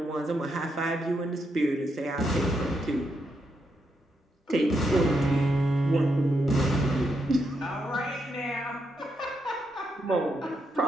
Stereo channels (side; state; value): both; normal; correlation 0.81